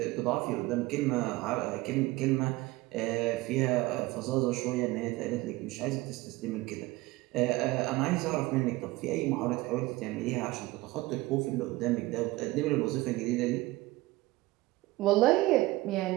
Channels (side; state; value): left; quieter; 19.6 dB